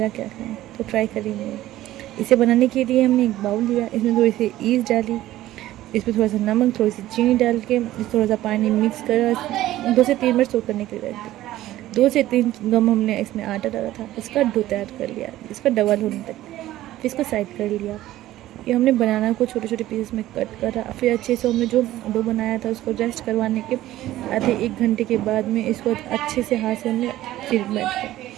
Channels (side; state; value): left; quieter; 14.9 dB